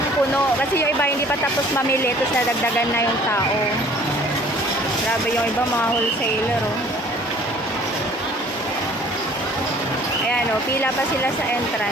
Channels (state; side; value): normal; both; correlation 0.53